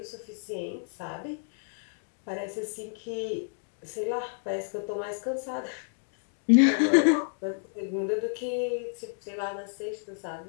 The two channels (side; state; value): right; silent; digital silence